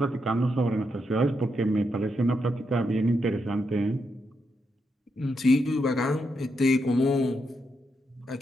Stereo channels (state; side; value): normal; both; correlation 0.82